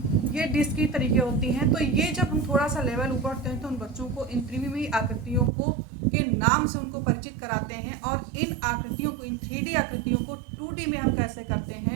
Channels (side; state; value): left; drops out; at 5.5 s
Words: ये डिस्क की तरीके होती हैं। तो ये जब हम थोड़ा सा लेवल ऊपर उठते हैं तो उन बच्चों को इन त्रिविमीय आकृतियों को के नाम से उनको परिचित कराते हैं, और इन आकृतियों को, इन 3D आकृतियों को 2D में हम कैसे करते